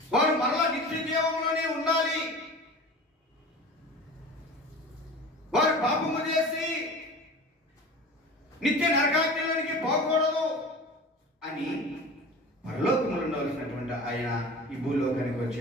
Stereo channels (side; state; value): both; normal; correlation 0.37